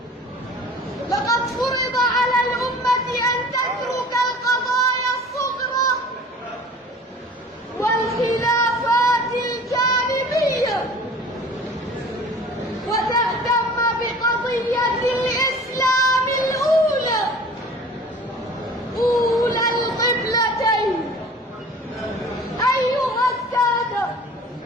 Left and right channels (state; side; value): normal; both; correlation 0.45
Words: لقد فرض على الأمة أن تترك القضايا الصغرى والخلافات الجانبية وتهتم بقضية الإسلام الأولى، أولى القبلتين. أيها السادة،